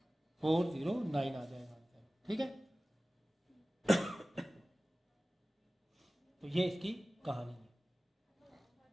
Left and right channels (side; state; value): both; normal; correlation 0.97